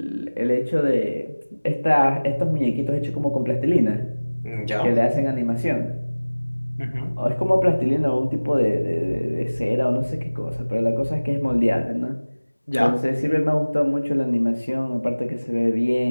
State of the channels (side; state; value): both; inverted; correlation -1.00